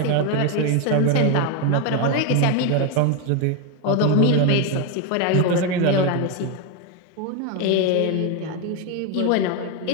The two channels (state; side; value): different; both; correlation 0.02